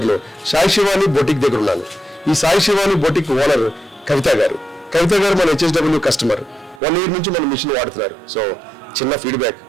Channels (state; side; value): drops out; left; at 6.8 s